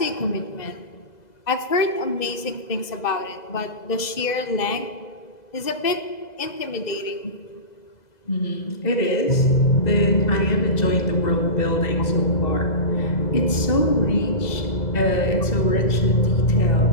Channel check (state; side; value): late; right; 2.0 ms